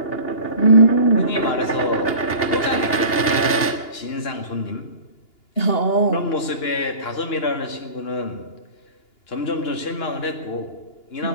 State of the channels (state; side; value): late; right; 2.8 ms